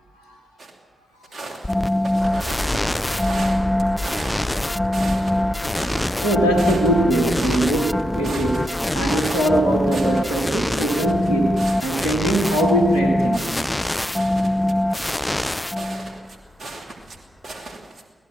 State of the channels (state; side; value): normal; both; correlation 0.84